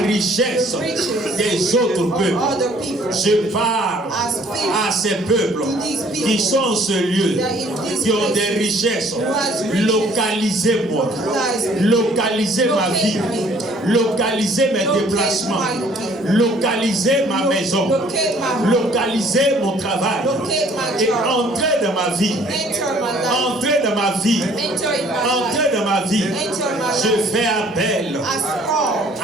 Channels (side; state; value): both; normal; correlation 0.58